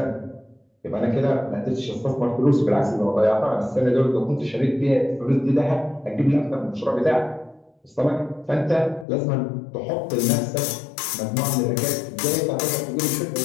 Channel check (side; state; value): right; drops out; at 9.1 s